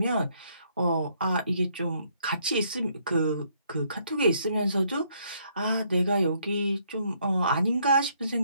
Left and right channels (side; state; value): both; inverted; correlation -0.69